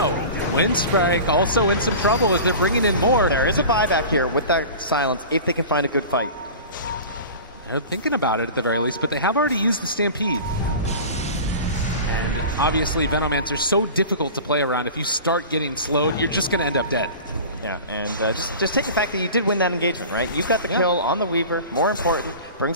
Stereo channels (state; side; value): inverted; both; correlation -0.36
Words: Winstrike also in some trouble as they're bringing in more. There is a buyback here with that silence if they can find a good fight. They're thinking about it at the very least, but they have already used the Stampede. And obviously, Venomancer are so difficult to play around. If you start getting slowed, you're just going to end up dead. Yeah, and just take the fact that you did win that engagement, right? You got the kill on the Weaver. More important, brings